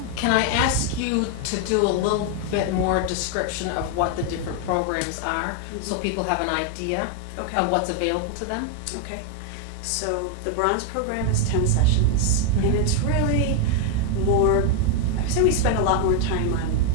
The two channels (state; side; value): different; both; correlation 0.01